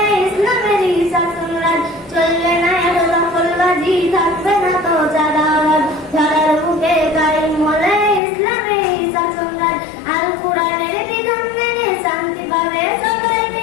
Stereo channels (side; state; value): right; drops out; at 8.2 s